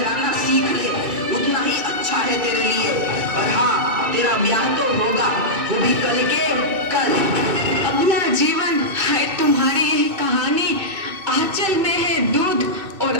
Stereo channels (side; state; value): left; late; 2.6 ms